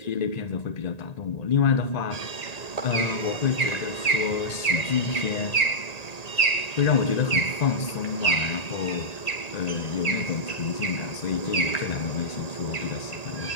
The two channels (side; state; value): right; late; 1.8 ms